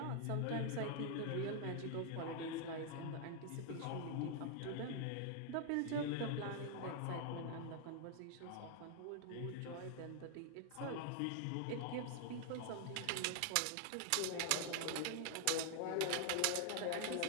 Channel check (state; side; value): different; both; correlation 0.00